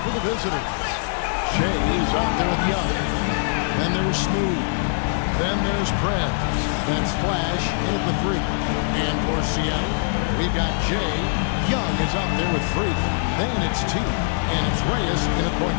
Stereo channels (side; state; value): right; silent; digital silence